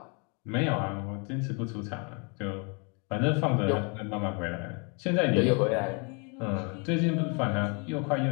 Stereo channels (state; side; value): quieter; right; 34.2 dB